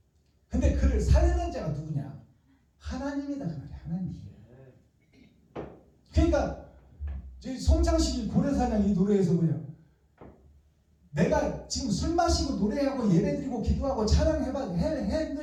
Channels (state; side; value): identical; both; correlation 1.00